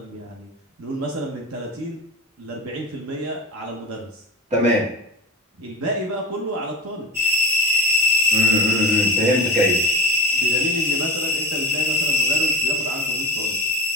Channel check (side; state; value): both; normal; correlation 0.29